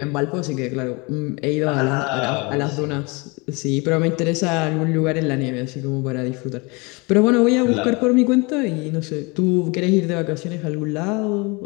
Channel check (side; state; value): right; quieter; 27.8 dB